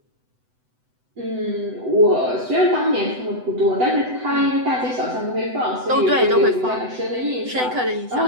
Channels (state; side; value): late; left; 7.9 ms